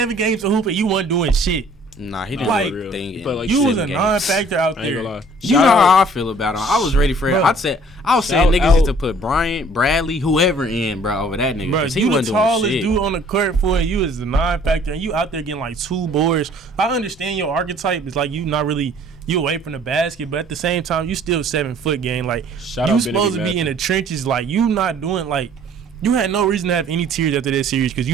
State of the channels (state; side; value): normal; both; correlation 0.55